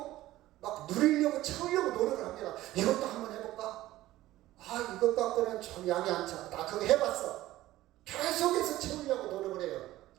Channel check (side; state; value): left; quieter; 15.8 dB